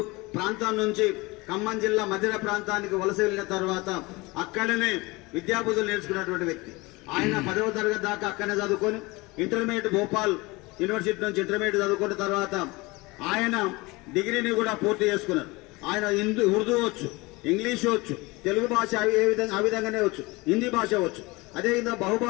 ప్రాంతం నుంచి ఖమ్మం జిల్లా మధిర ప్రాంతానికి వలస వెళ్లిన తర్వాత అక్కడనే విద్యాబుద్ధులు నేర్చుకున్నటువంటి వ్యక్తి. ఆయన 10వ తరగతి దాకా అక్కడనే చదువుకొని ఇంటర్మీడియట్ భోపాల్ యూనివర్సిటీ నుంచి ఇంటర్మీడియట్ చదువుకున్న తర్వాత ఆయన డిగ్రీని కూడా పూర్తి చేసుకున్నారు. ఆయన ఉర్దూ వచ్చు, ఇంగ్లీష్ వచ్చు, తెలుగు భాష ఆ విధంగానే వచ్చు, హిందీ భాష వచ్చు. అదేవిధంగా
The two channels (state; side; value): quieter; right; 23.6 dB